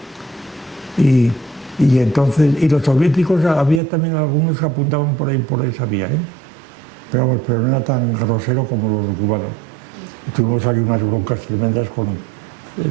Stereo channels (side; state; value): left; drops out; at 3.8 s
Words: Y entonces, y los soviéticos, había también algunos que apuntaban por esa vía, ¿eh? Pero no era tan grosero como los cubanos. Tuvimos ahí unas broncas tremendas